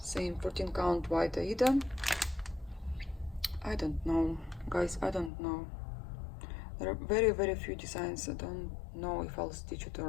same 14 count white Aida. I don't know, guys, I don't know. There are very, very few designs. I don't know if I'll stitch it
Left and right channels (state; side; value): drops out; right; at 5.3 s